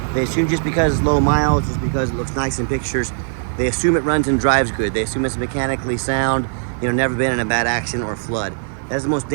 They assume just because it's low miles, just because it looks nice in pictures, they assume it runs and drives good. They assume it's mechanically sound, never been in a bad accident or flood. That is the most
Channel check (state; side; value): silent; left; digital silence